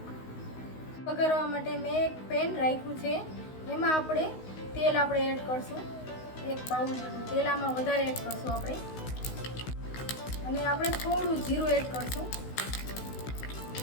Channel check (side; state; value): right; late; 16 ms